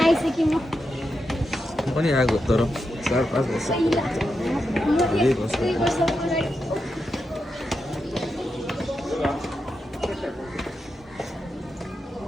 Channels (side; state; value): both; normal; correlation 0.87